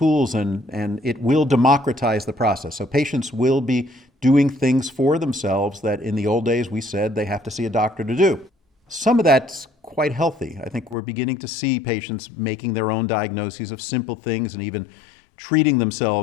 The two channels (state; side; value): drops out; right; at 11.0 s